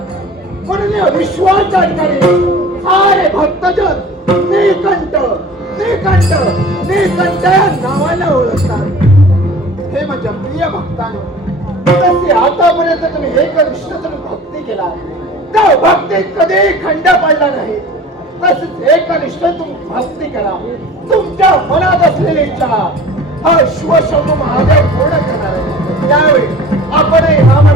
म्हणून या विश्वाच्या ठिकाणी सारे भक्तजन निकंठ निकंठ निकंठ या नावाने ओळखतात हे माझ्या प्रिय भक्तांनो तसे आतापर्यंत तुम्ही हे कनिष्ठ तुम्ही भक्ती केला त्या भक्तीत कधी खंड पडला नाही तसेच एकनिष्ठ तुम्ही भक्ती करा तुमच्या मनात असलेली इच्छा हा शिवशंभू महादेव पूर्ण करणार आहे त्यावेळी आपणही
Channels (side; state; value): both; normal; correlation 0.43